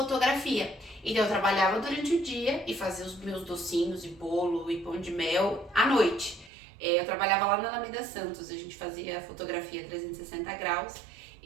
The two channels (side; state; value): left; drops out; at 6.5 s